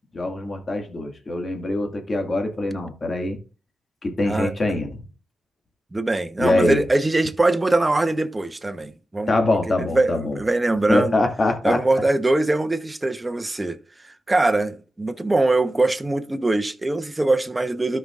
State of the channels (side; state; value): both; normal; correlation 0.93